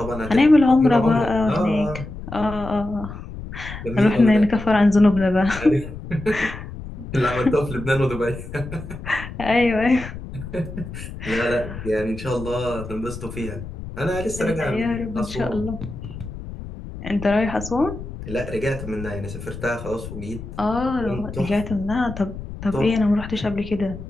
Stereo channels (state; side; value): noise; left; rumble, 11 dB below the sound